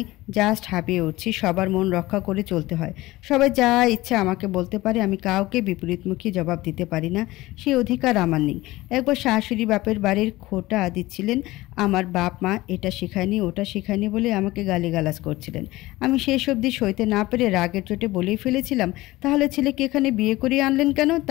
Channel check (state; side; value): quieter; right; 18.6 dB